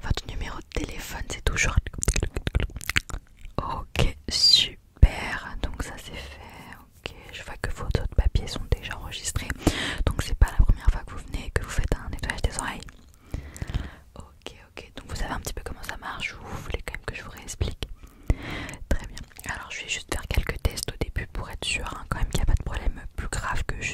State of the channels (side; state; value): both; identical; correlation 1.00